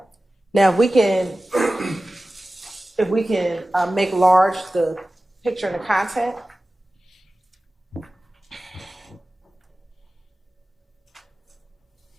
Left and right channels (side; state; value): both; normal; correlation 0.96